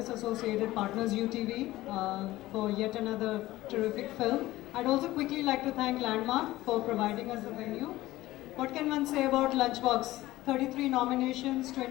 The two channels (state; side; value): quieter; right; 16.9 dB